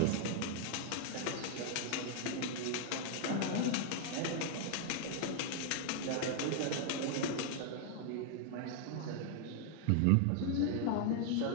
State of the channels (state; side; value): different; both; correlation 0.00